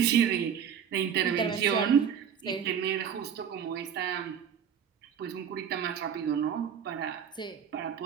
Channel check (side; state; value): left; quieter; 8.0 dB